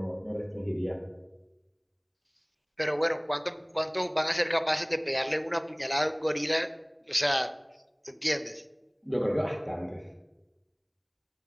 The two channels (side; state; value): both; identical; correlation 1.00